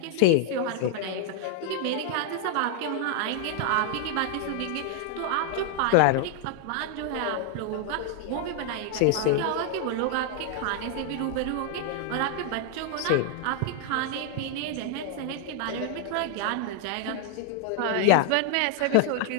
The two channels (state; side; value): different; both; correlation 0.00